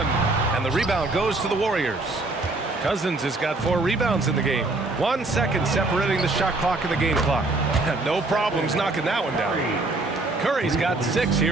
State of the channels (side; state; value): left; quieter; 3.1 dB